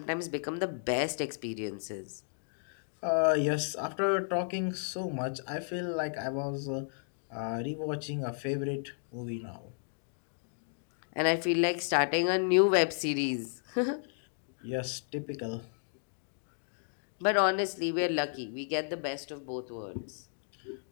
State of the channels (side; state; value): right; silent; digital silence